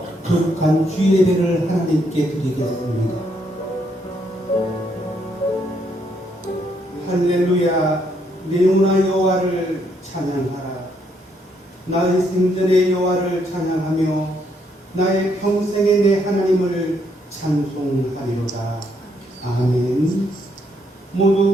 거룩한 주의 예배를 하나님께 드리겠습니다. 할렐루야. 내 영혼아 여호와를 찬양하라. 나의 생전의 여호와를 찬양하며 나의 평생의 내 하나님을 찬송하리로다. 아멘.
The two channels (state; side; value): normal; both; correlation 0.73